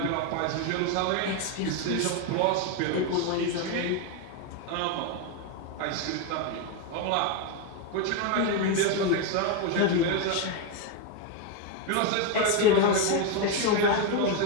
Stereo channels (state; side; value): different; both; correlation 0.02